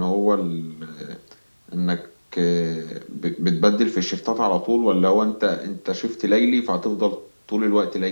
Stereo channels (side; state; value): both; inverted; correlation -1.00